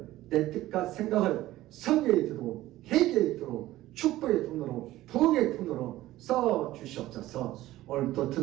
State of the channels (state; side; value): quieter; left; 15.8 dB